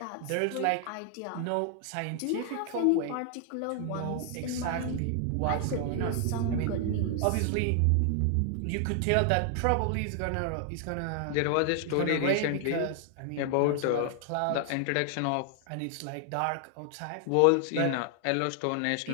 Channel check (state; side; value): different; both; correlation 0.00